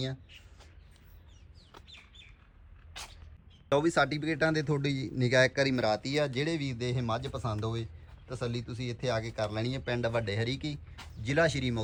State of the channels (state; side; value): identical; both; correlation 1.00